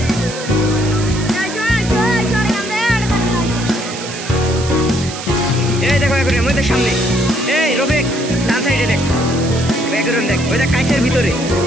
এই দেখো এখন আমাদের সামনে, এই রফিক ডান সাইডে দেখ, ব্যাকগ্রাউন্ড দেখ, ওই দেখ কাছের ভিতরে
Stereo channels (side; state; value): right; noise; hiss, 10 dB below the sound